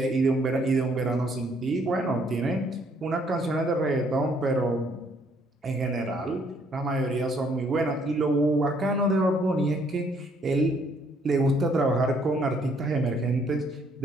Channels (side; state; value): both; normal; correlation 0.66